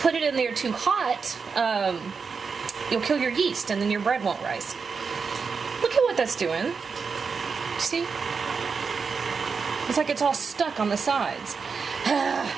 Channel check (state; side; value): quieter; left; 5.3 dB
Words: it in there too hot, you'll kill your yeast and then your bread won't rise. Look at what that's doing. See? It's like it's all stuck on the sides.